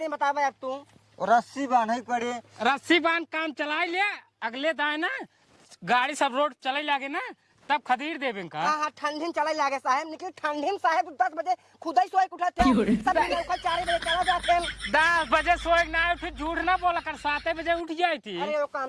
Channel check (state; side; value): identical; both; correlation 1.00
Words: बतावे अब तू। रस्सी बांधे पड़े। रस्सी बांध काम चला ले अगले दाए ना गाड़ी सब रोड चले लागे ना तब खरीद देवे का। हाँ ठंडी में चले लागे साहेब निकल ठंडी में साहेब 10 बजे खुदा ही सोए उठाते सब 4 बजे चला जाते 10 बजे सोए ना उठ झूठ ना बोला कर 7 बजे उठ जाई थी। अरे वो